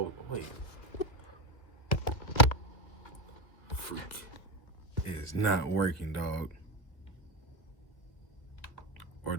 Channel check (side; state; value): right; late; 2.3 ms